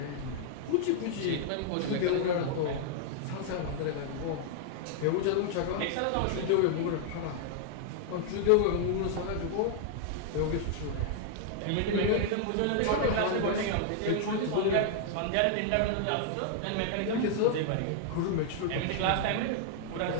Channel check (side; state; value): both; different; correlation 0.00